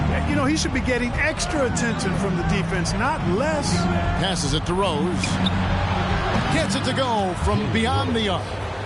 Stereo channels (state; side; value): identical; both; correlation 1.00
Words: You know, he should be getting extra attention from the defense, not less. Passes it to Rose. Gets it to go from beyond the arc.